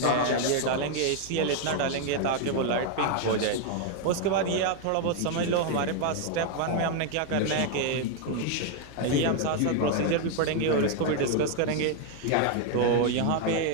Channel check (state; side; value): different; both; correlation 0.01